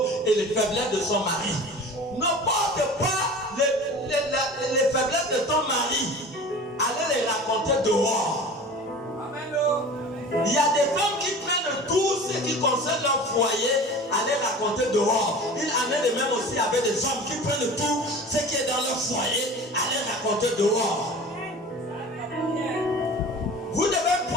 et les faiblesses de son mari. Ne porte pas les faiblesses de ton mari. Allez les raconter dehors. Il y a des femmes qui prennent tout ce qui concerne leur foyer à les raconter dehors. Il en est de même aussi avec des hommes qui prennent tout ce qui est dans leur foyer à les raconter dehors. Vous devez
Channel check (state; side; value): normal; both; correlation 0.38